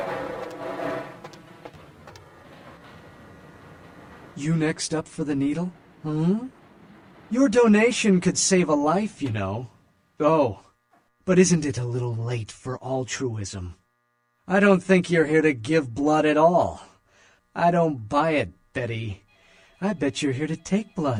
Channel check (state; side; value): identical; both; correlation 1.00